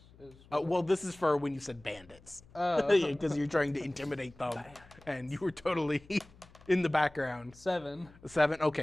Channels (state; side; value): noise; left; hum, 25 dB below the sound